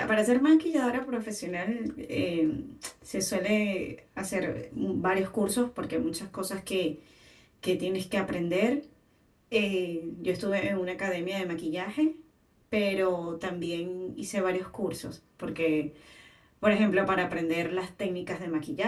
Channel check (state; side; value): identical; both; correlation 1.00